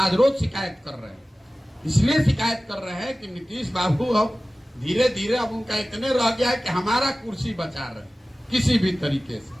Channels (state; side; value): normal; both; correlation 0.97